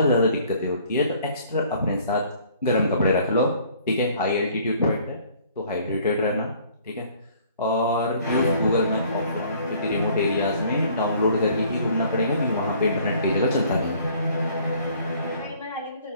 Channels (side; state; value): both; inverted; correlation -0.57